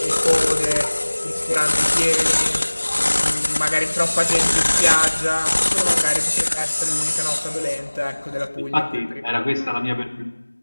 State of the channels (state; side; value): inverted; both; correlation -1.00